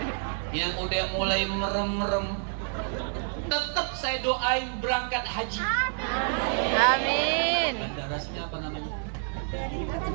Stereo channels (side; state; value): left; silent; digital silence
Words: yang udah mulai merem-merem, tetap saya doain berangkat haji. Amin. Bandara sini apa namanya?